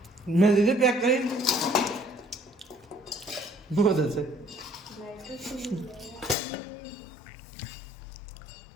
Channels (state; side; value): drops out; right; at 6.4 s